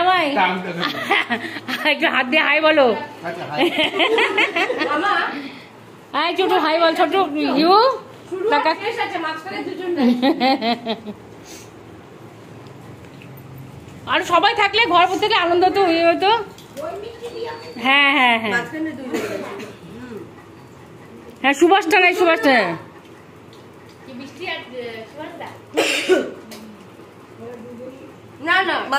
একটু হাত দিয়ে হাই বলো। হাই ছোট, হাই বল ছোট। ইউ আর সবাই থাকলে ঘর থেকে আনন্দ তো হয়ে হতো। হ্যাঁ হ্যাঁ হ্যাঁ হ্যাঁ, সুভাষটা নাই, সুভাষটা না না,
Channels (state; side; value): identical; both; correlation 1.00